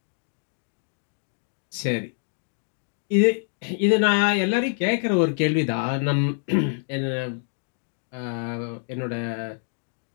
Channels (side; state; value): right; silent; digital silence